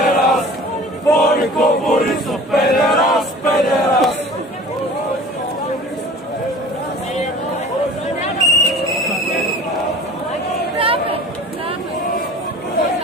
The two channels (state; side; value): normal; both; correlation 0.43